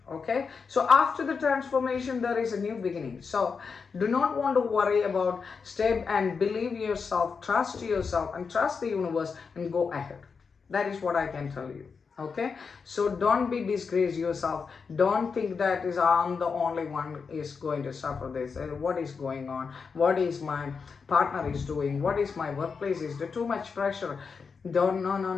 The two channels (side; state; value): right; quieter; 5.4 dB